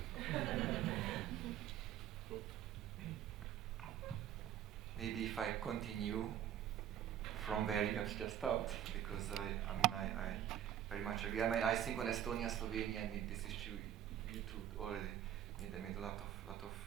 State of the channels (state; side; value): quieter; left; 10.7 dB